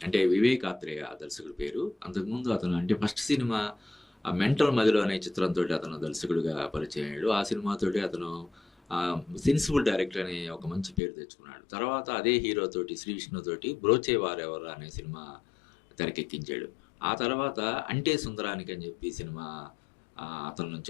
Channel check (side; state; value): right; drops out; at 11.0 s